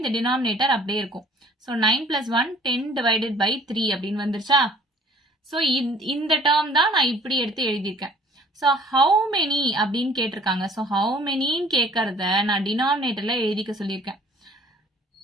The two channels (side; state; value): both; normal; correlation 0.54